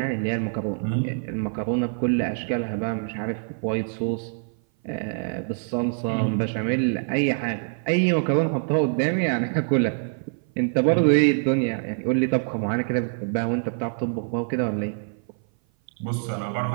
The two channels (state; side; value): silent; left; 57 dB below the other